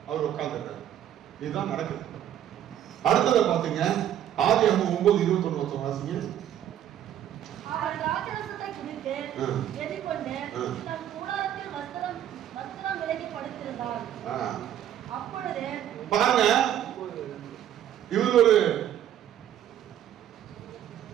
அவர் உட்கார்ந்துட்டார். இதுதான் நடக்குது. அடுத்ததை பாத்தீங்க, ஆதியாகமம் 9:21 வாசிங்க. பாருங்க, இவர் ஒரு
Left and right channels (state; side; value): quieter; left; 10.8 dB